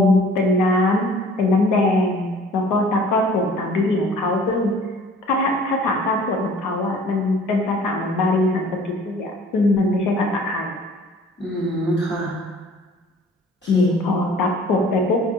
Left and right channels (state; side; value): normal; both; correlation 0.51